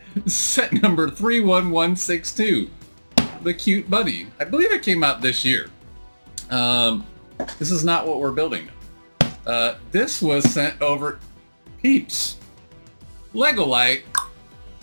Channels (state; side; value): inverted; both; correlation -1.00